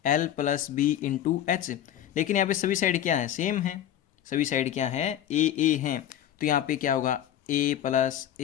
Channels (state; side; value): quieter; right; 11.1 dB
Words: plus B into H। लेकिन यहाँ पे सभी साइड क्या है, सेम है, सभी साइड क्या है, A हैं। तो यहाँ पे क्या होगा, A प्लस